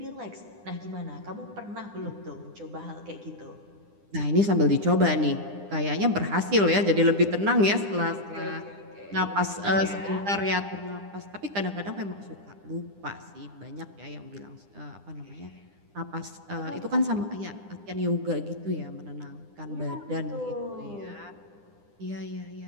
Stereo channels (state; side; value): late; left; 9.9 ms